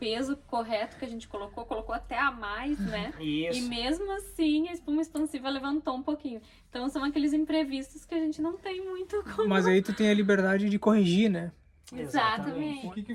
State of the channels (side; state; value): both; identical; correlation 1.00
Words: correto que a gente colocou até a mais, né? Isso. E mesmo assim a espuma expansiva levantou um pouquinho. Então são aqueles imprevistos que a gente não tem muito como... Mas aí tu tem a liberdade de corrigir, né? Exatamente. O que